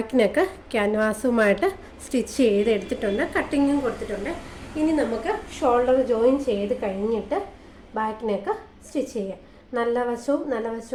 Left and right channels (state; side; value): identical; both; correlation 1.00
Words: നെക്ക് ക്യാൻവാസുമായിട്ട് സ്റ്റിച്ച് ചെയ്തെടുത്തിട്ടുണ്ട്, കട്ടിങ്ങും കൊടുത്തിട്ടുണ്ട്. ഇനി നമുക്ക് ഷോൾഡർ ജോയിൻ ചെയ്ത് കഴിഞ്ഞിട്ട് ബാക്ക് നെക്ക് സ്റ്റിച്ച് ചെയ്യാം. നല്ല